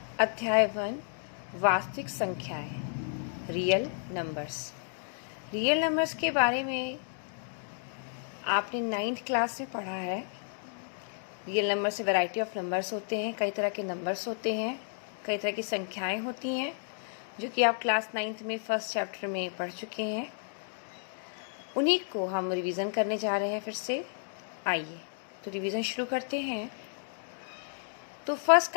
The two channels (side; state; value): right; silent; digital silence